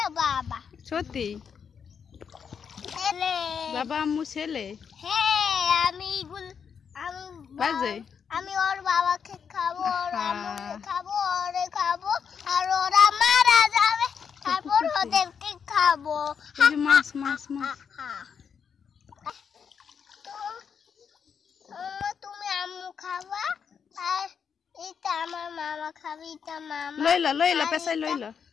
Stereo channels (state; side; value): quieter; right; 6.9 dB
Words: বাবা সত্যি ছেলে বাবা আম্মু ছেলে হ্যাঁ আমি বাজে আমি ওর বাবাকে খাবো ওর আম্মুকে খাবো ওরে খাবো আর ওরা মারা যাবে তারপর ওদেরকে খাবো মাছ তুমি আম্মু খাবা আর এটা আমার মামা খাবে এটা মামা লইলা পেছাই লইলা